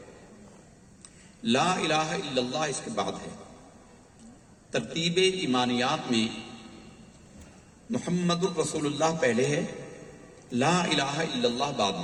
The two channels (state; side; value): identical; both; correlation 1.00